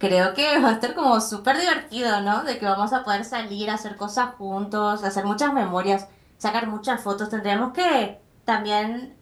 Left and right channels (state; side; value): identical; both; correlation 1.00